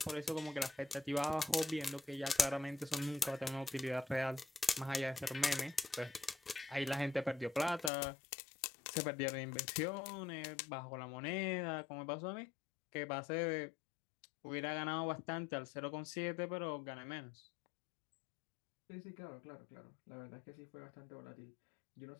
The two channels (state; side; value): drops out; right; at 7.9 s